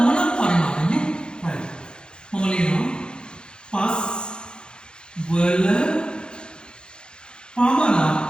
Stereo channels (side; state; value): right; late; 0.049 ms